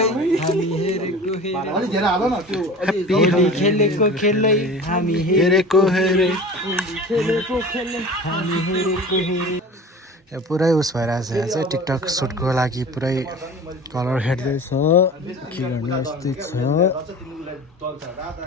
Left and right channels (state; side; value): normal; both; correlation 0.38